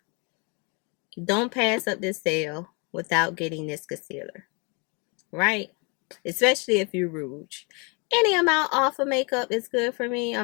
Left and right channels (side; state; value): right; quieter; 32.3 dB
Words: Don't pass up this sale without getting this concealer, right? Especially if you're rouge. Any amount off of makeup is good for me.